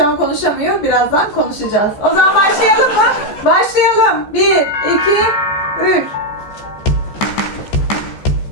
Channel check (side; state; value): right; late; 14 ms